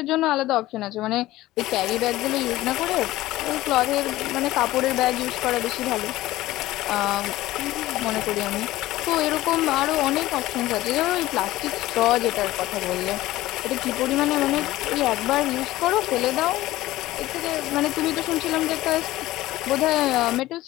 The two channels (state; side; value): quieter; right; 16.6 dB